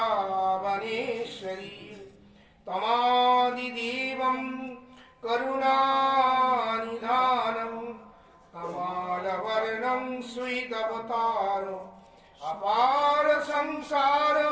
তমাদিদেবং করুণানিধানং কমলবর্ণং শ্রীদবতারো अपार संसार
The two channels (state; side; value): identical; both; correlation 1.00